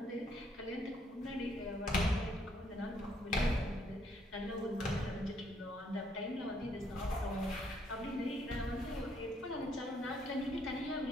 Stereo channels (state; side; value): normal; both; correlation 0.70